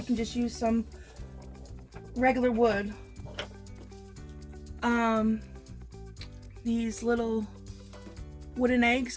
can just use some regular wood. These little wooden eggs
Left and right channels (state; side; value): identical; both; correlation 1.00